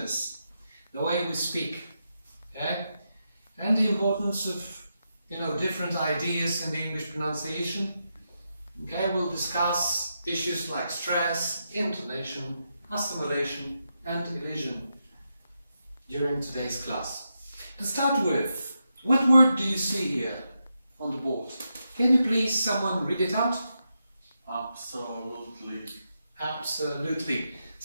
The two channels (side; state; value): both; inverted; correlation -0.85